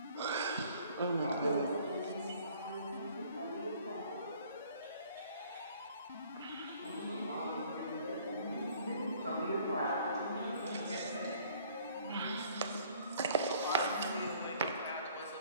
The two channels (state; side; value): inverted; both; correlation -0.56